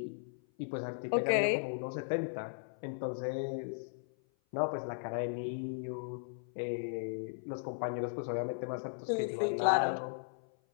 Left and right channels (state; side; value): silent; right; 53 dB below the other